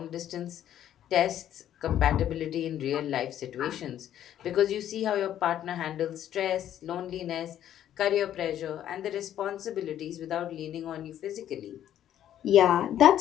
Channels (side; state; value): right; quieter; 11.1 dB